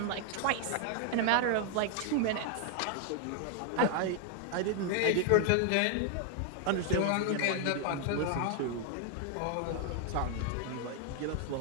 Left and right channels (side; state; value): both; different; correlation 0.00